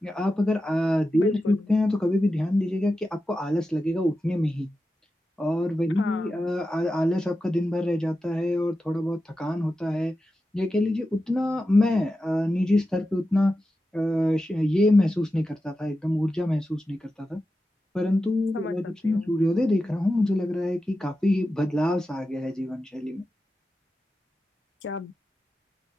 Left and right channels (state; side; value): normal; both; correlation 0.91